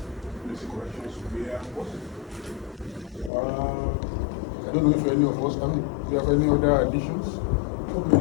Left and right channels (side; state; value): right; drops out; at 3.3 s